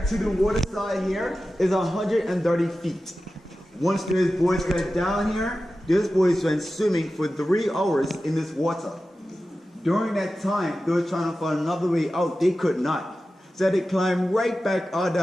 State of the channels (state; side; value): normal; both; correlation 0.94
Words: to the water side here is 130 feet. Once those boys got down here, those boys went swimming for 3 hours in this water. During that time, they were trying to find another way out. They could not. So they climbed right back out